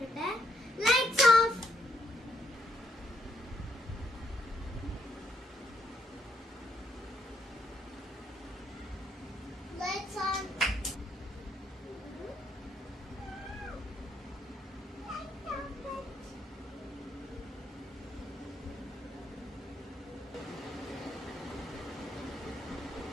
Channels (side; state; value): both; normal; correlation 0.74